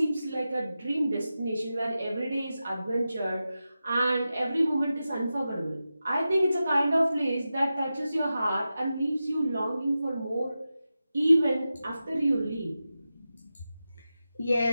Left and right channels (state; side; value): inverted; both; correlation -0.92